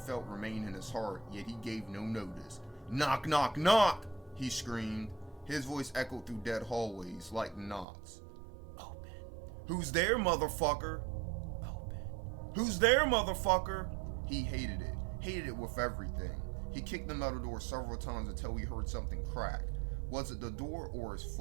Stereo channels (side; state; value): left; drops out; at 7.9 s